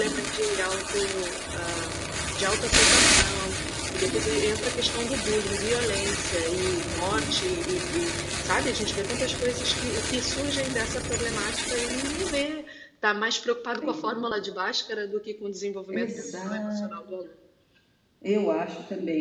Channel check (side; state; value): both; identical; correlation 1.00